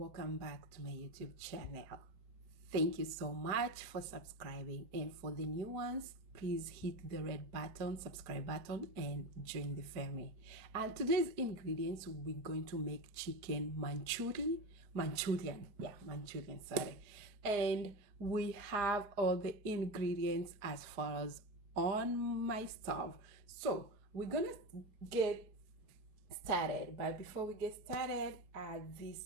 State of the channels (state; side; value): late; left; 4.9 ms